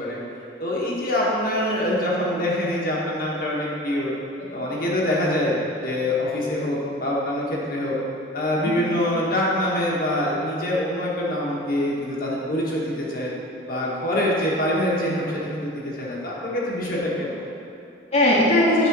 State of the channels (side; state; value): both; normal; correlation 0.35